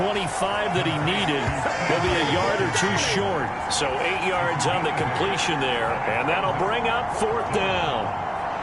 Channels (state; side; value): identical; both; correlation 1.00